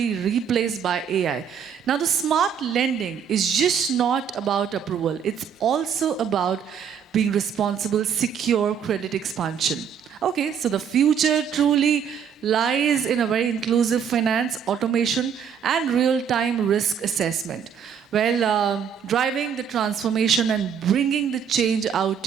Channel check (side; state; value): left; quieter; 7.6 dB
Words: replaced by AI. Now, the smart lending is just not about approval. It's also about being responsible, secure credit expansion. Okay, so the future truly lies in a very inclusive finance, automation, and real-time risk assessment. Well, driving the transformation and bringing the change out